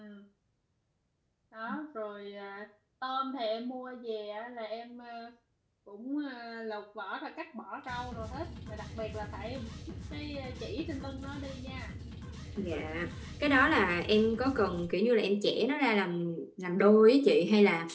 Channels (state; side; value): identical; both; correlation 1.00